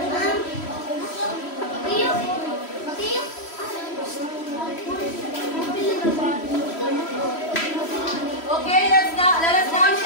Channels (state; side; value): late; right; 3.1 ms